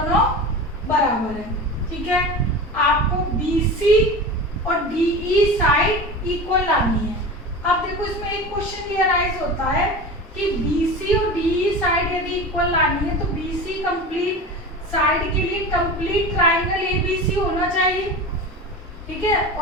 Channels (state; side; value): normal; both; correlation 0.30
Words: बराबर है। ठीक है, आपको BC और DE साइड इक्वल लानी है। अब देखो इसमें एक क्वेश्चन ये अराइज होता है कि BC और DE साइड यदि इक्वल लानी है तो BC कंप्लीट साइड के लिए कंप्लीट ट्राइंगल ABC होना चाहिए। ठीक है,